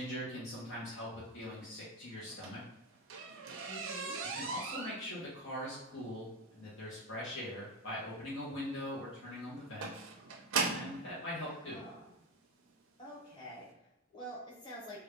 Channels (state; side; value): normal; both; correlation 0.13